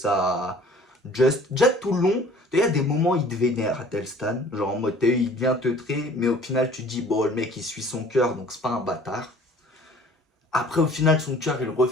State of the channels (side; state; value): both; normal; correlation 0.51